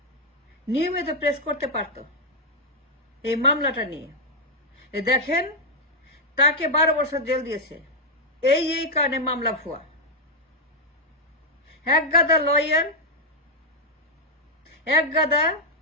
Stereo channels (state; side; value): normal; both; correlation -0.01